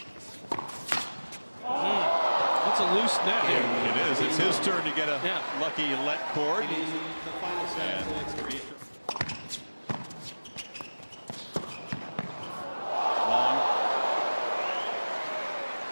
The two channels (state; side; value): inverted; both; correlation -1.00